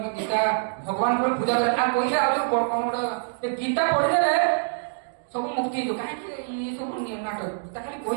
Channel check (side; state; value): left; silent; digital silence